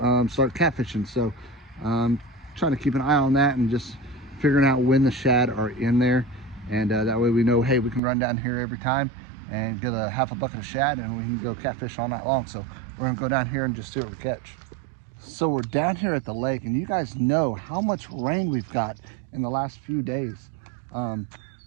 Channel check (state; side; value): drops out; left; at 8.0 s